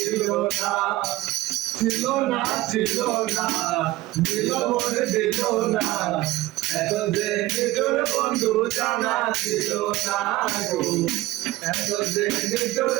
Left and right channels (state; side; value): quieter; left; 17.6 dB